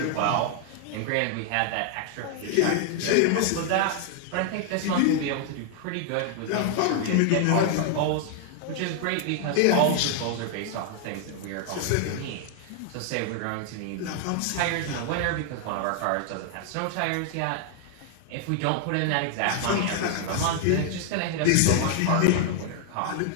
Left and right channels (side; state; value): both; different; correlation 0.00